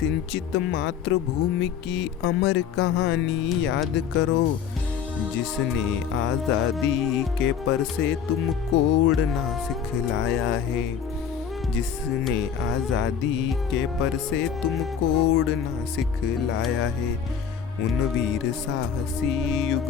मातृभूमि की अमर कहानी याद करो। जिसने आज़ादी के पर से तुमको उड़ना सिखलाया है। जिसने आज़ादी के पर से तुमको उड़ना सिखलाया है। उन वीर साहसी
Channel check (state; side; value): quieter; right; 7.6 dB